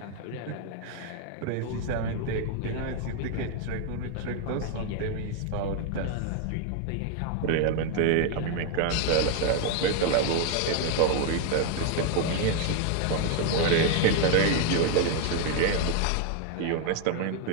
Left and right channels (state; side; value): different; both; correlation 0.01